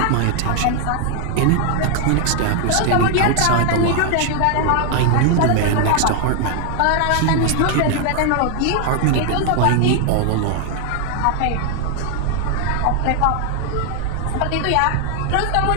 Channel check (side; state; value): both; different; correlation 0.00